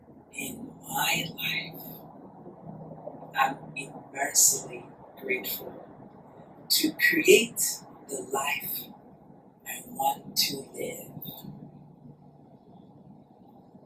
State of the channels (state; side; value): identical; both; correlation 1.00